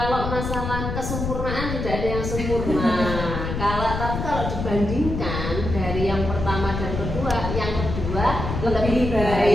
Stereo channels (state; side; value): noise; left; rumble, 4 dB below the sound